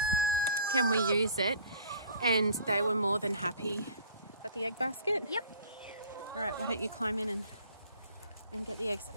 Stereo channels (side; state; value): both; inverted; correlation -0.49